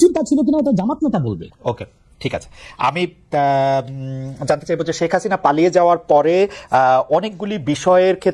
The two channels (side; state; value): both; identical; correlation 1.00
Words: চিন্তা ছিল কিনা ওটা জামাত নেতা বলবে। ওকে, ঠিক আছে। আমি জানতে চাইবো যে শেখ হাসিনা পালিয়ে যাওয়ার পরে অনেকগুলি বিষয়ের